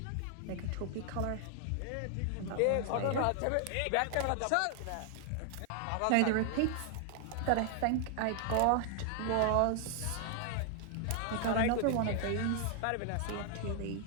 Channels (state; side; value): different; both; correlation 0.00